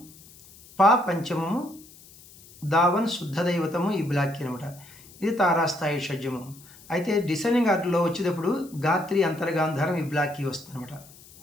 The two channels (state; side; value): noise; left; hiss, 22 dB below the sound